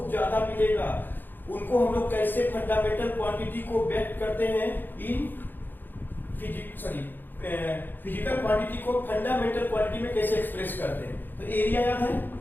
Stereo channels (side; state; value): right; late; 0.091 ms